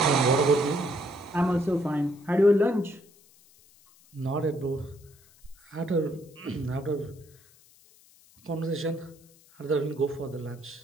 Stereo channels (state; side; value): noise; left; hiss, 28 dB below the sound